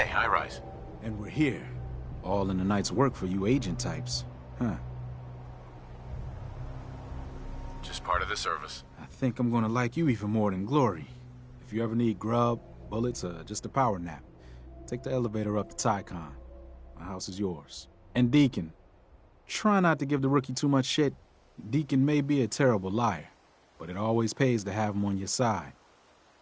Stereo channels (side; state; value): both; identical; correlation 1.00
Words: High-Rise. And we're here. All in the night's work for you agent types. Huh. Just part of the service. I think I'm gonna like you even more than Glory. If you ever need grub, bullets, or just a power nap, take the elevator up to Tycon. My house is yours. And Deacon, try not to give the rookie too much shit. Deacon may be a terrible liar, but it always pays to have him on your side.